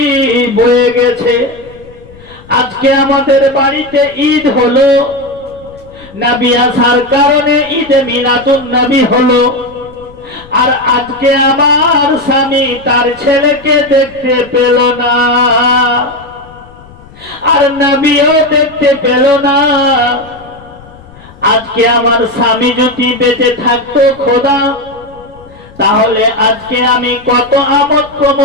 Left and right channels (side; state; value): left; noise; rumble, 23 dB below the sound